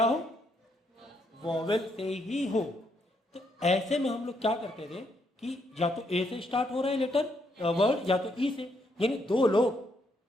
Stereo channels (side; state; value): both; normal; correlation 0.75